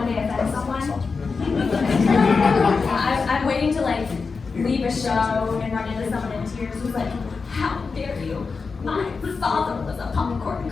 day offend someone. I'm waiting to like leave a show and run into someone in tears who's like, "How dare you? My father was a popcorn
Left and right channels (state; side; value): quieter; right; 4.7 dB